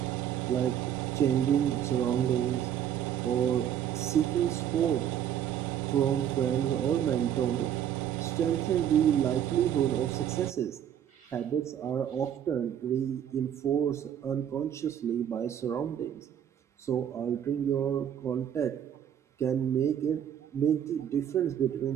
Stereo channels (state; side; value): quieter; left; 9.8 dB